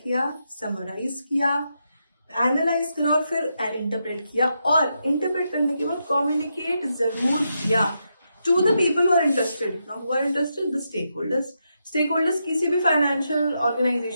किया, summarise किया, analyse करा और फिर इंटरप्रेट किया, और इंटरप्रेट करने के बाद कम्युनिकेट जरूर किया to the people who are interested. Now who are interested? The stakeholders. Stakeholders किसी भी फाइनेंशियल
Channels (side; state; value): both; inverted; correlation -0.83